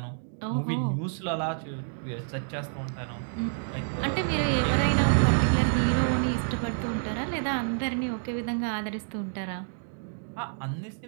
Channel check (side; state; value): left; silent; digital silence